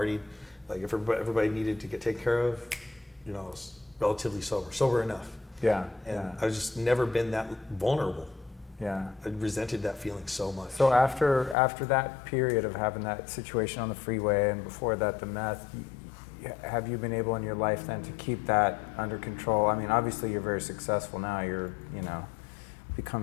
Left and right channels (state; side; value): drops out; right; at 11.6 s